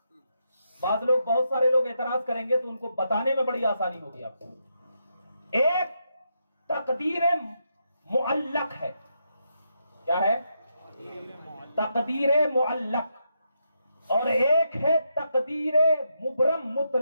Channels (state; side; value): inverted; both; correlation -0.81